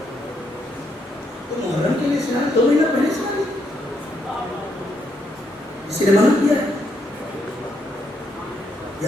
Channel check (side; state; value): both; normal; correlation 0.76